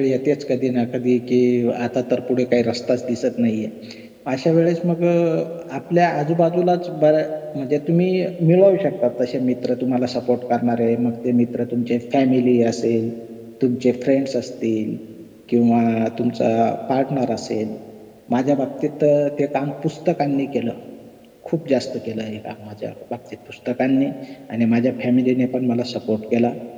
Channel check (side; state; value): both; identical; correlation 1.00